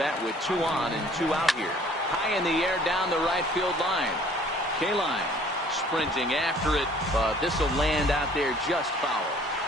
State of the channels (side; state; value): both; normal; correlation 0.54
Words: with 2 on and 2 out here. High in the air down the right field line. Kaline sprinting after it, but this will land out there just foul.